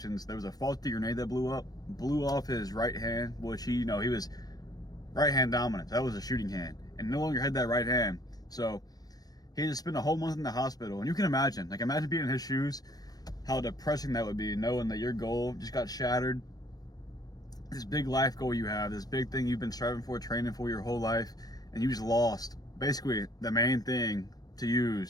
there was a faulty grenade that blew off his right hand, which he was right hand dominant. That was a shooting hand, and no longer had that right hand. So he had to spend a whole month in the hospital. And you can imagine being in his shoes, how depressing that would be, knowing that your goal just got shattered. This big life goal you have, this big thing you've been striving for, training for your whole life, and you just lost basically the main thing to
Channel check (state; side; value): late; right; 0.19 ms